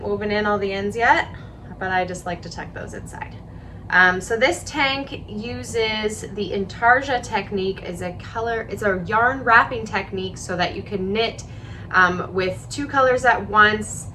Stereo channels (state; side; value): identical; both; correlation 1.00